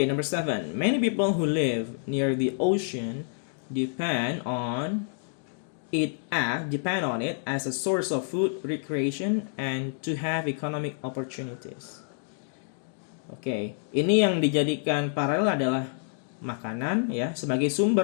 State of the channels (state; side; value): silent; right; digital silence